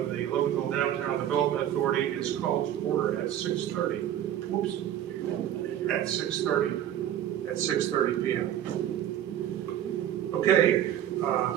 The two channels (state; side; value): quieter; left; 11.0 dB